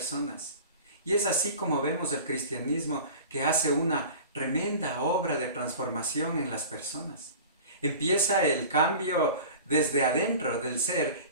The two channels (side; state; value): both; inverted; correlation -0.38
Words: Y es así como vemos el cristianismo que hace una tremenda obra de transformación en las personas. Empieza el cambio desde adentro del ser